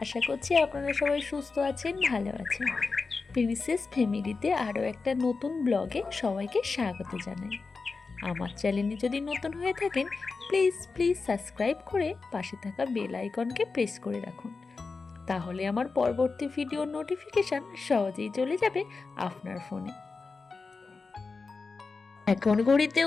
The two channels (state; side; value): quieter; right; 4.3 dB